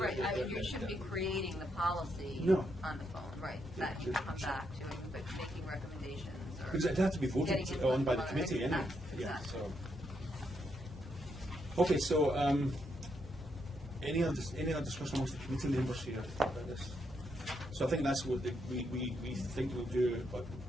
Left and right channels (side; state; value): both; normal; correlation 0.78